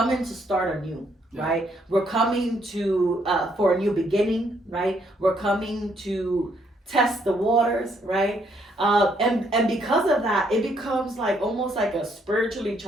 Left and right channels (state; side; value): normal; both; correlation 0.71